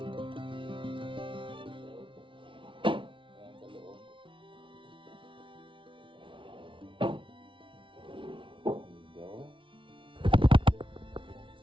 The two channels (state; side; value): late; left; 0.25 ms